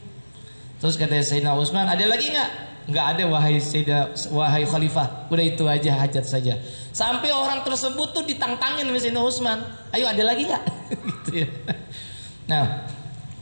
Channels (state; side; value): inverted; both; correlation -1.00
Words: Terus kata Sayyidina Utsman, ada lagi nggak? Nggak ada wahai khalifah. Udah itu aja hajat saja. Sampai orang tersebut tuh ditantangin sama Sayyidina Utsman. Ayo ada lagi nggak? Gitu ya. Nah,